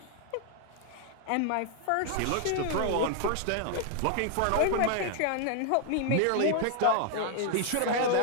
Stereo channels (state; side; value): different; both; correlation 0.00